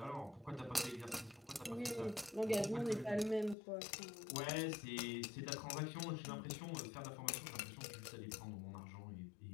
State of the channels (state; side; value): drops out; right; at 3.6 s